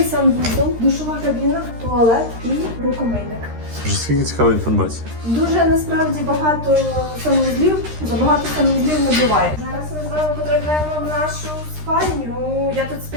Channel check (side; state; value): left; late; 13 ms